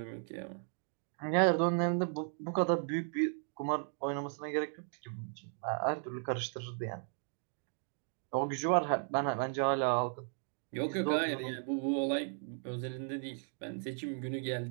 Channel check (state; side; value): silent; left; 54 dB below the other